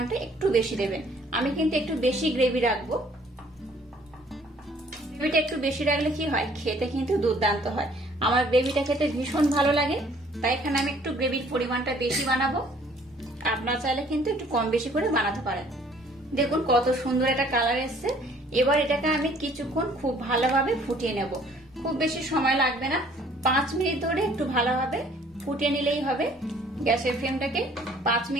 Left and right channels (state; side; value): normal; both; correlation 0.58